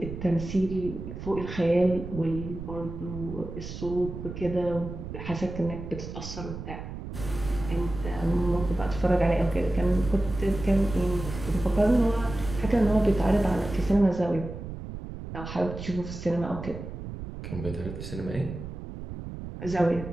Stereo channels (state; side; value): noise; right; rumble, 9 dB below the sound